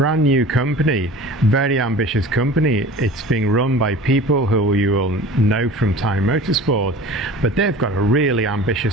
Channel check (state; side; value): normal; both; correlation 0.40